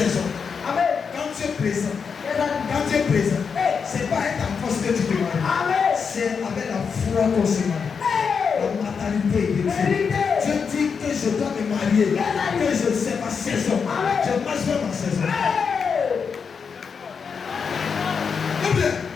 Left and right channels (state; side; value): quieter; right; 6.0 dB